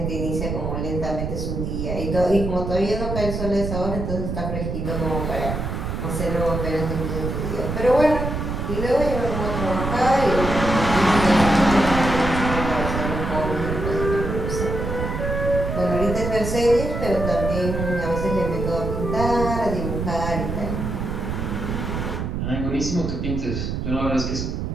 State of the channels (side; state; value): right; noise; rumble, 3 dB below the sound